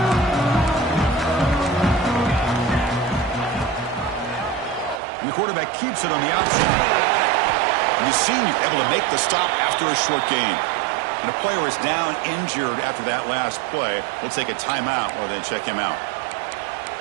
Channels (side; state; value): left; drops out; at 5.0 s